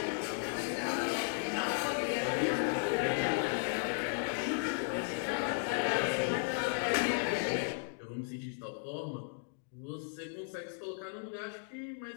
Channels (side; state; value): right; silent; digital silence